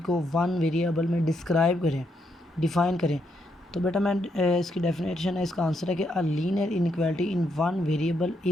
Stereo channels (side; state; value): both; normal; correlation 0.78